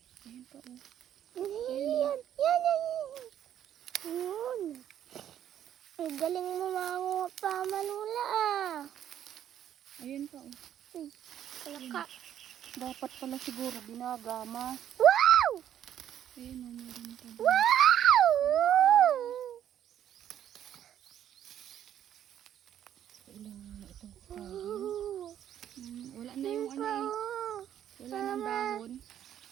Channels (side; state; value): left; quieter; 10.5 dB